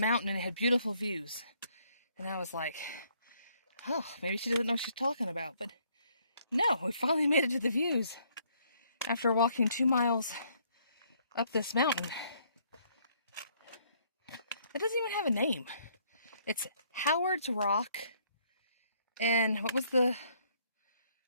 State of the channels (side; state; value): both; inverted; correlation -0.67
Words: and it had beautiful views. And I was like, oh, maybe she doesn't know what she's talking about, but no, we finally made it to the views after walking 2 miles up this mountain. It doesn't even have a name. It's Howard's Rock, and what was the